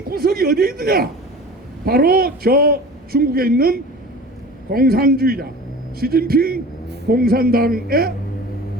구석이 어디에 있느냐? 바로 저 중국에 있는 공산주의자 시진핑 공산당에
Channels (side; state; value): both; normal; correlation 0.38